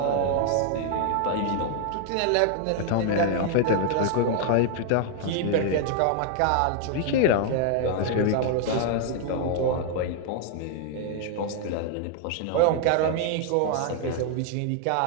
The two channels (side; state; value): both; different; correlation 0.00